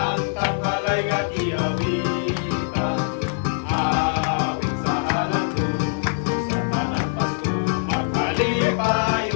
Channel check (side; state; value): right; silent; digital silence